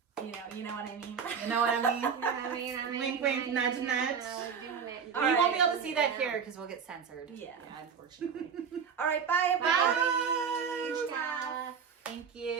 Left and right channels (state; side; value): quieter; left; 6.7 dB